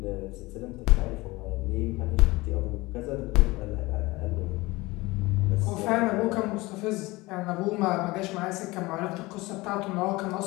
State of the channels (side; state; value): right; quieter; 21.5 dB